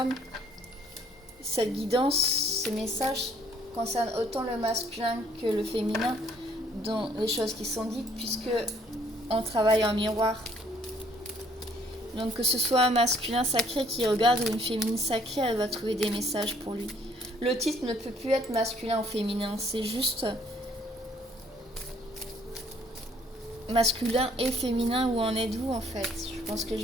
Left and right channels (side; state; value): both; normal; correlation 0.62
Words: cette guidance, ces messages concernent autant le masculin que le féminin dans les choses qui sont dites, puisque on travaille en miroir. Donc que ce soit un masculin sacré qui regarde ou une féminine sacrée, elle va trouver des messages pour lui. Le titre ne peut plus être masculin ou féminin, c'est juste masculin et féminin, où en êtes-vous en fait? Je pense que je